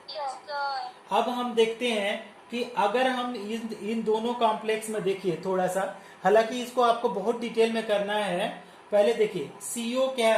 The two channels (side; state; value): both; identical; correlation 1.00